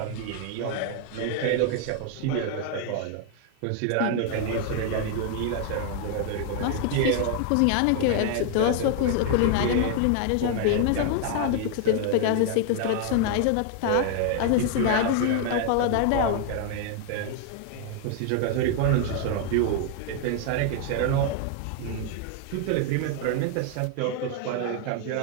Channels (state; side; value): different; both; correlation 0.00